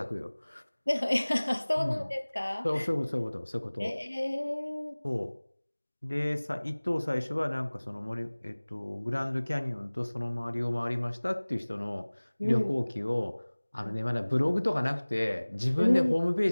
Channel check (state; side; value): inverted; both; correlation -1.00